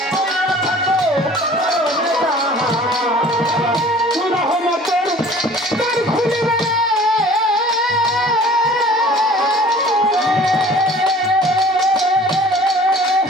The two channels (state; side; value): normal; both; correlation 0.48